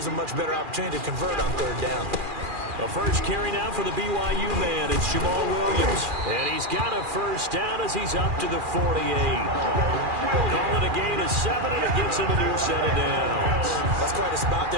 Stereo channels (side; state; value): left; late; 2.4 ms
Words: him a much better opportunity to convert on third down. A first carry now for the BYU man. It's Jamal Williams. And he's got a first down as he's up to the 48. Call it a gain of 7, and it gets him a new set of downs. That's quite a spot